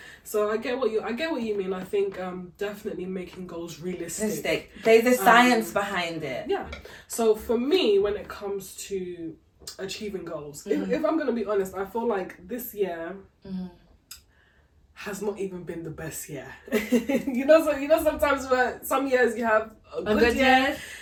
So I get what you mean. I think definitely making goals realistic. There's a science behind it. Yeah. So for me, when it comes to achieving goals, if I'm gonna be honest, I feel like this year has not even been the best year. you know, sometimes where some years you have a good year.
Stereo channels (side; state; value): both; identical; correlation 1.00